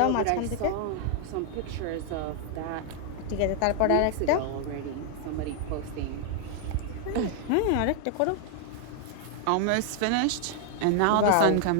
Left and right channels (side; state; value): both; different; correlation 0.00